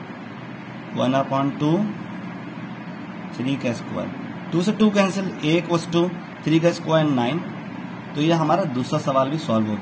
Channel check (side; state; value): both; identical; correlation 1.00